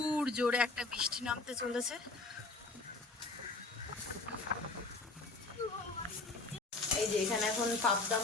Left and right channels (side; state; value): right; quieter; 3.5 dB